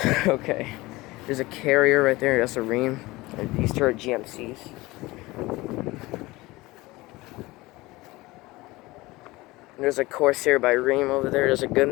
Okay. There's a Carrier right there. That's a Rheem. And these two are GMCs. There's a Corsair by Rheem over there. There's a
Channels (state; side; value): quieter; right; 20.6 dB